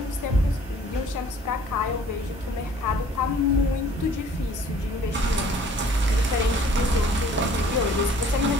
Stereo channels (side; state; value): both; normal; correlation 0.54